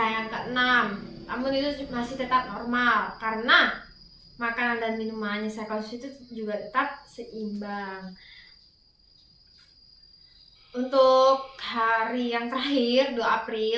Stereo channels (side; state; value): both; identical; correlation 1.00